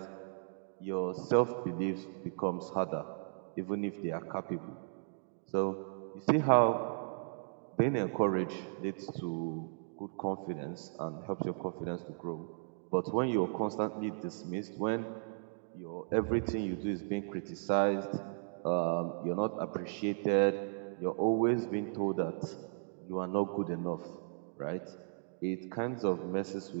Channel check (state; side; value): silent; left; digital silence